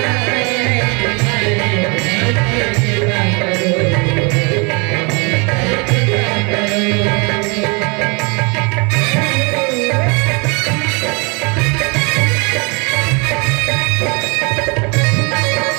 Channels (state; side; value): quieter; left; 31.4 dB